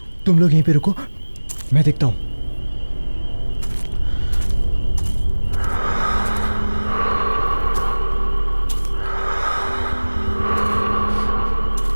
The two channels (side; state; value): both; inverted; correlation -1.00